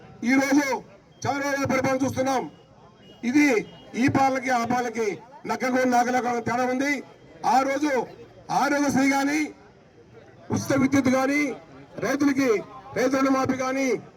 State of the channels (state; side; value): identical; both; correlation 1.00